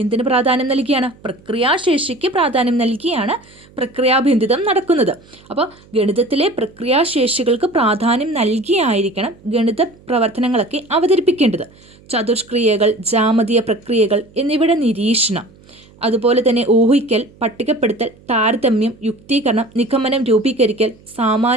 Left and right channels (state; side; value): noise; right; hum, 26 dB below the sound